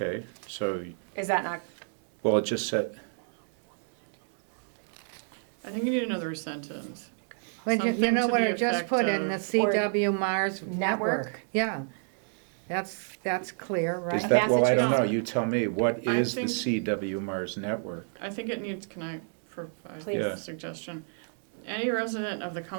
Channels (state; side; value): silent; left; 58 dB below the other